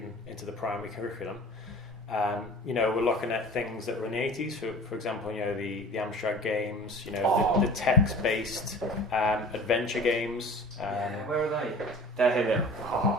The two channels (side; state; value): both; normal; correlation 0.41